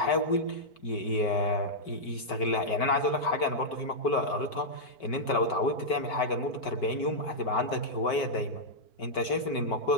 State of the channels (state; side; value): late; right; 5.2 ms